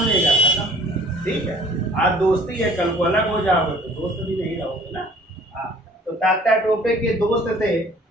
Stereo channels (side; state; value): both; normal; correlation 0.52